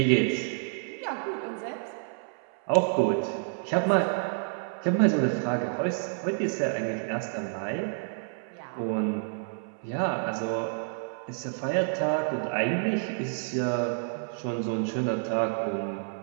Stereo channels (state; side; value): silent; left; 59 dB below the other